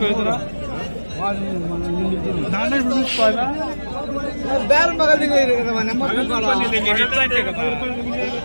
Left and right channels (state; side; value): inverted; both; correlation -1.00